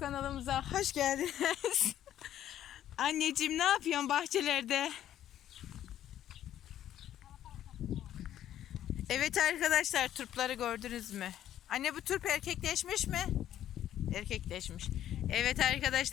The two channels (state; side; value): quieter; right; 11.5 dB